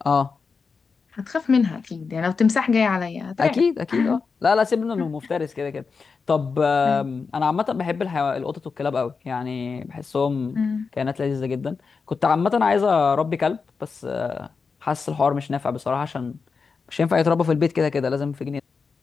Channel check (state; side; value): quieter; right; 5.0 dB